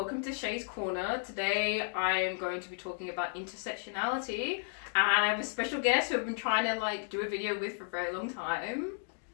to Shay's Corner. Today I'm going to be talking about intersectionality, and I have a special guest who I've been trying to do a video with for a very long time.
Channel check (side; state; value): right; silent; digital silence